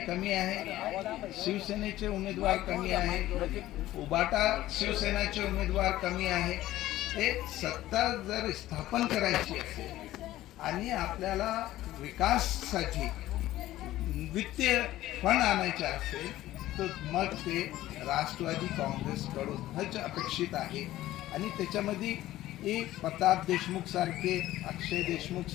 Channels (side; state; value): right; quieter; 15.1 dB